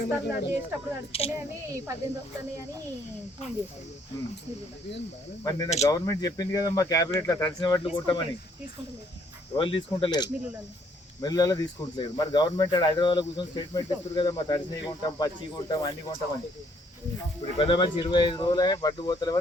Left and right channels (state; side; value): normal; both; correlation 0.66